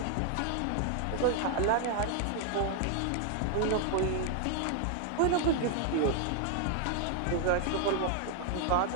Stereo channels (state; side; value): different; both; correlation 0.00